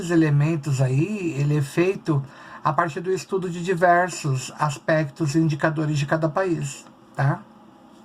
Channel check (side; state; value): both; identical; correlation 1.00